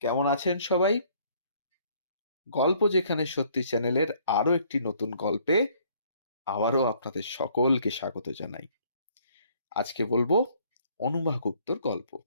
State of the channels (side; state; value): both; inverted; correlation -0.62